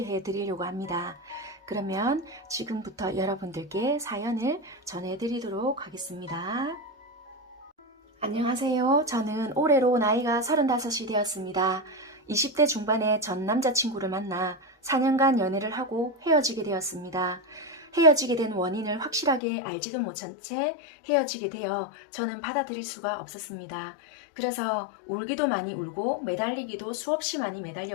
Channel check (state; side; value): drops out; right; at 19.4 s